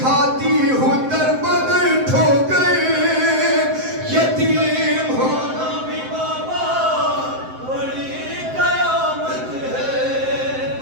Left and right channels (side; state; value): left; late; 7.7 ms